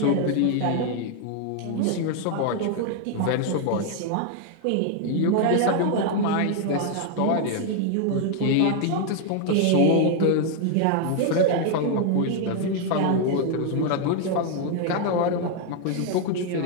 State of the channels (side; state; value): both; different; correlation 0.00